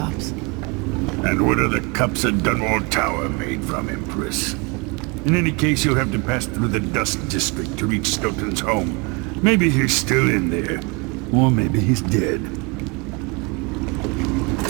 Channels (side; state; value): left; quieter; 29.6 dB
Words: And what are the cups at Dunwall Tower made from, Empress? In any case, you'll have to pass through the Dust District to reach Stilton's home. Maybe he's still in there, or maybe he's dead.